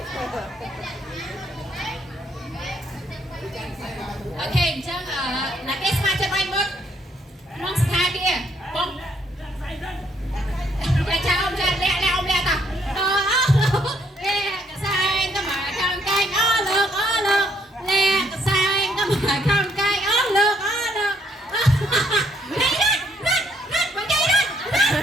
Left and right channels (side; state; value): both; normal; correlation 0.69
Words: អូខេអញ្ចឹងណាគេស្មាចិត្តវាយមុតក្នុងស្ថានភាពបងចាចៅអមចាលាក់អមលាក់តាលាក់កសែងទៅមកខាងកែងអូលើកលាក់កសែងទៅមកខាងកែងអូលើកនេះណាមកជ័យណា